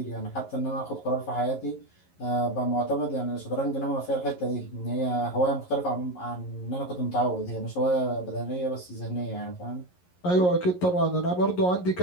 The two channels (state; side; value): late; right; 11 ms